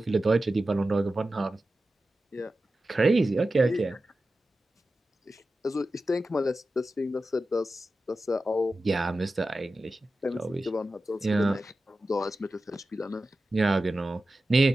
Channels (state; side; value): normal; both; correlation 0.93